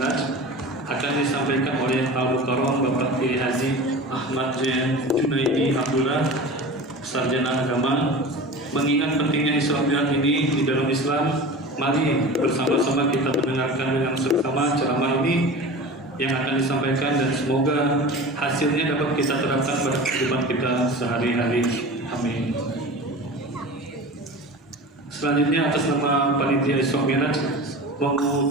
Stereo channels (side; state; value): both; normal; correlation 0.34